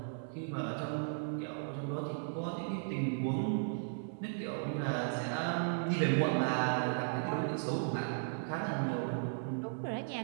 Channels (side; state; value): left; silent; 54 dB below the other